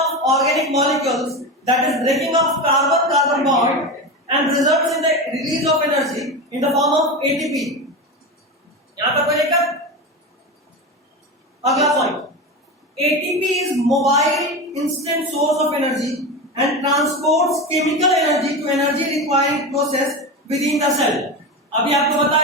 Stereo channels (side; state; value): both; normal; correlation 0.22